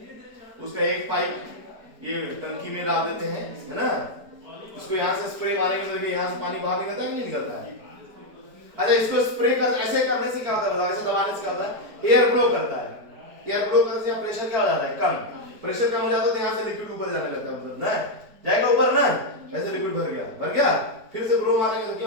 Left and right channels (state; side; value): late; left; 4.8 ms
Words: उसका एक पाइप ये टंकी में डाल देते हैं, है ना, इसको यहाँ से स्प्रे मारेंगे तो यहाँ से पानी बाहर निकलता है कि नहीं निकलता है? अच्छा, इसको स्प्रे कर ऐसे करने से क्या होता है बताओ, ऐसे दबाने से क्या होता है, एयर फ्लो करता है, एयर फ्लो करने से यहाँ प्रेशर क्या हो जाता है, कम, प्रेशर कम हो जाता है तो यहाँ से लिक्विड ऊपर जाने लगता है, मतलब ना जाएगा ऊपर ना, ऐसे लिक्विड भर गया, फिर से ब्लो मारेंगे तो